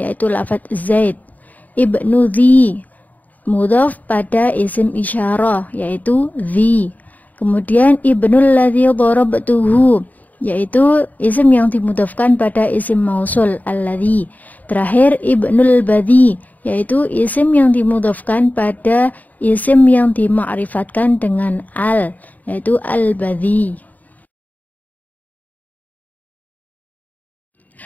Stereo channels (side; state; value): right; late; 0.078 ms